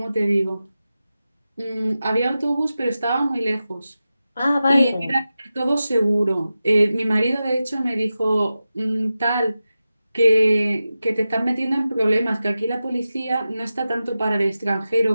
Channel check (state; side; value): inverted; both; correlation -0.93